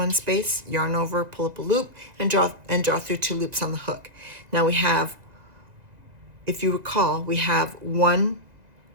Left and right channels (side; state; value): left; late; 1.8 ms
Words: space, yarn over, pull up a loop, and draw through 2 loops on the hook. Now we have, if you recall, we have a